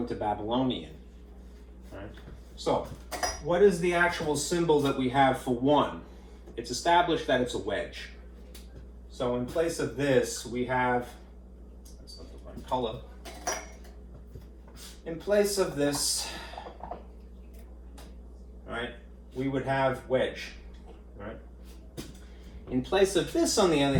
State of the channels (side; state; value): both; identical; correlation 1.00